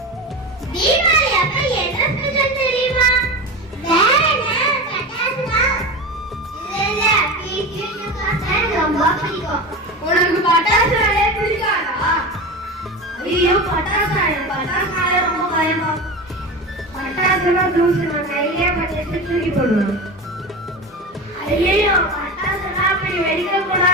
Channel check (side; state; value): both; normal; correlation 0.27